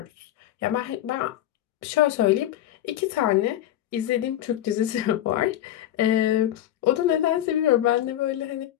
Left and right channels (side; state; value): right; quieter; 12.4 dB